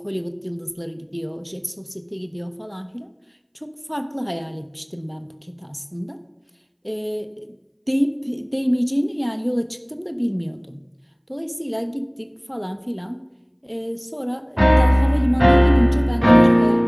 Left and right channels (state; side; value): identical; both; correlation 1.00